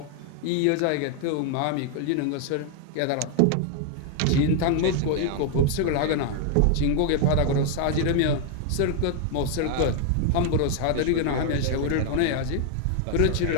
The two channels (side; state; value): both; different; correlation 0.00